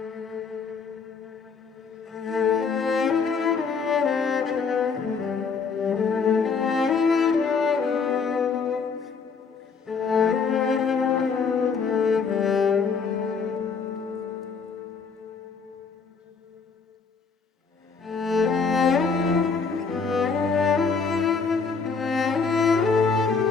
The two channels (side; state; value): right; quieter; 5.3 dB